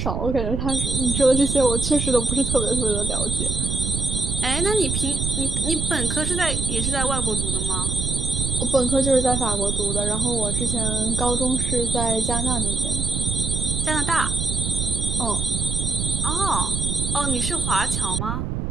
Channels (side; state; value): right; noise; rumble, 2 dB below the sound